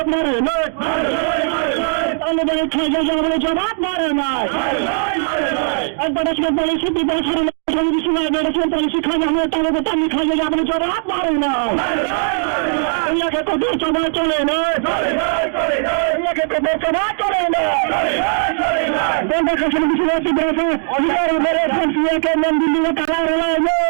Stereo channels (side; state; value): left; silent; 67 dB below the other